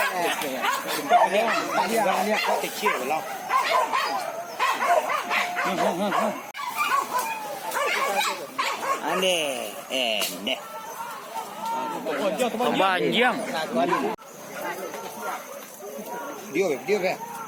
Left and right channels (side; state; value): both; identical; correlation 1.00